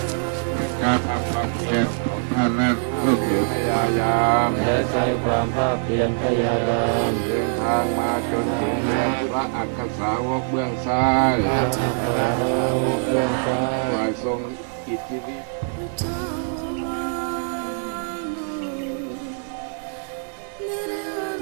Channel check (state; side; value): silent; left; digital silence